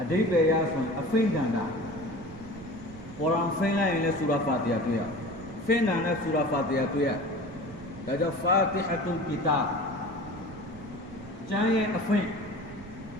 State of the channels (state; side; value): noise; right; rumble, 18 dB below the sound